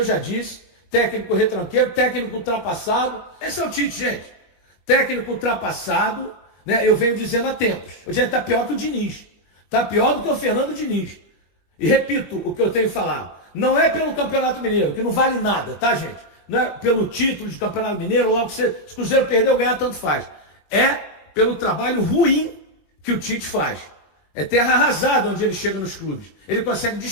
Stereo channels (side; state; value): right; late; 21 ms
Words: já disse, técnico retranqueiro, técnico ultrapassado. Esse é o Tite, gente. Técnico ultrapassado, né, eu venho dizendo há tempos. O gente está pior que o Diniz. Está pior do que o Fernando Diniz. E repito o que eu tenho falado. Não é pelo Campeonato Mineiro, que não vale nada, tá, gente? Não é pelo título de Campeonato Mineiro, logo se o Cruzeiro perder ou ganhar, tanto faz. É pelo trabalho ruim que o Tite faz. É terra arrasada onde ele chega nos clubes. Ele consegue